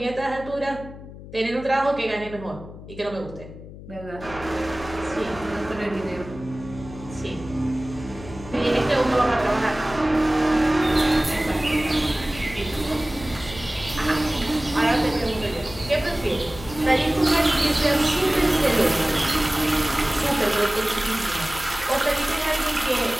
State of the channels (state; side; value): noise; left; hum, 15 dB below the sound